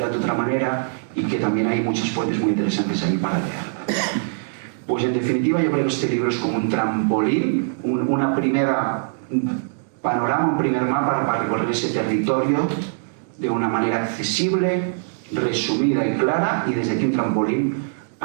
de otra manera, y que también hay muchas fuentes muy interesantes ahí para leer. Pues en definitiva yo creo que este libro es como un trampolín, un panorama, un primer mapa para recorrer ese territorio de una manera accesible, resumida y clara, y desde aquí un trampolín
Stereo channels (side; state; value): left; silent; digital silence